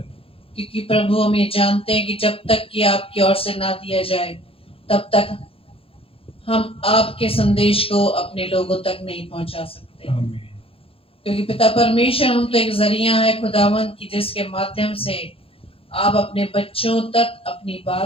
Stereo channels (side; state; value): right; late; 0.27 ms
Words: क्योंकि प्रभु, हम ये जानते हैं कि जब तक कि आपकी ओर से ना दिया जाए, तब तक हम आपके संदेश को अपने लोगों तक नहीं पहुंचा सकते। आमीन। क्योंकि पिता परमेश्वर, हम तो एक जरिया है खुदावन की, जिसके माध्यम से आप अपने बच्चों तक अपनी